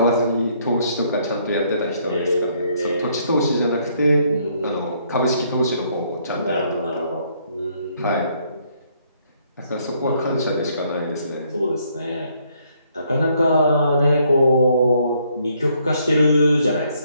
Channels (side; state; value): both; inverted; correlation -0.69